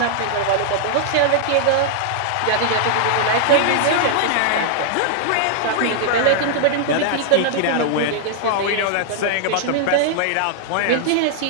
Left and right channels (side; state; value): both; different; correlation -0.01